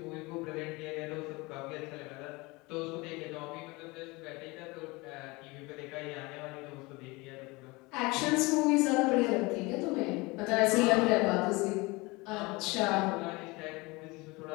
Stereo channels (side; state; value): right; quieter; 24.2 dB